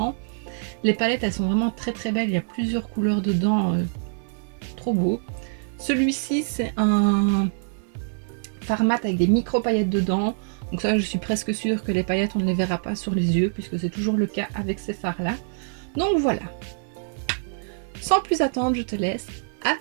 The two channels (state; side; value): silent; left; 62 dB below the other